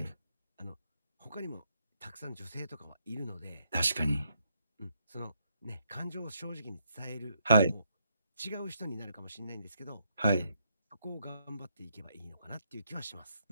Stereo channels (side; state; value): both; inverted; correlation -0.76